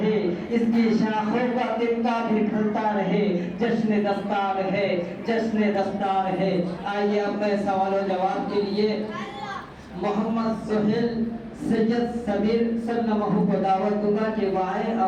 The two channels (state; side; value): identical; both; correlation 1.00